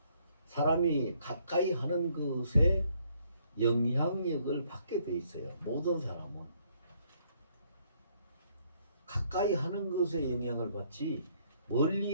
사람이 가까이 하는 것에 영향력을 받게 돼 있어요. 모든 사람은 가까이 하는 것에 영향을 받지 멀리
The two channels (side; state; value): both; inverted; correlation -0.67